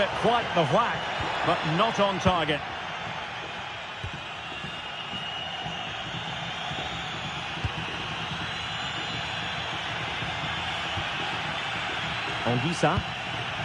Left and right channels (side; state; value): both; identical; correlation 1.00